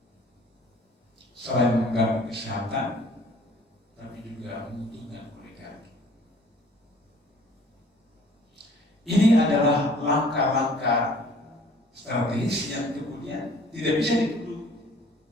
Selain mengganggu kesehatan, tapi juga menguntungkan oligarki. Ini adalah langkah-langkah strategis yang kemudian tidak bisa dituduh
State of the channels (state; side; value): normal; both; correlation 0.54